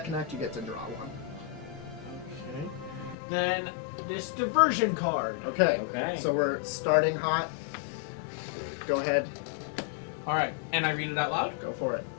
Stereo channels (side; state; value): right; drops out; at 3.2 s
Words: connect, you get to draw one. Okay. Then this diversion card. Okay. Okay. So we're starting hot. Go ahead. All right, and I read it out loud. Go for it.